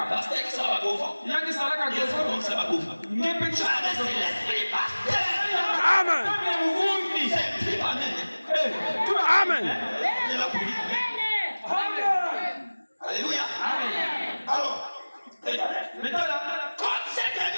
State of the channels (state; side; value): inverted; both; correlation -1.00